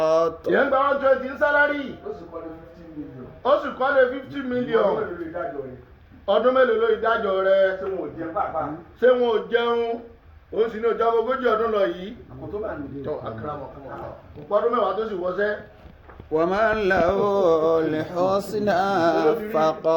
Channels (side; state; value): both; identical; correlation 1.00